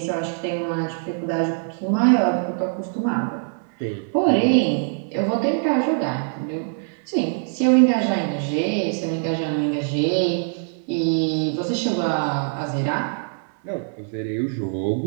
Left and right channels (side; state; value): left; silent; 59 dB below the other